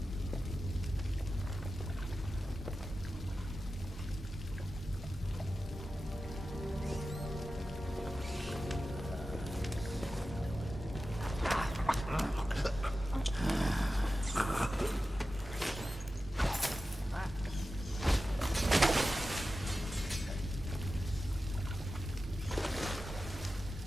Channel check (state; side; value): normal; both; correlation 0.93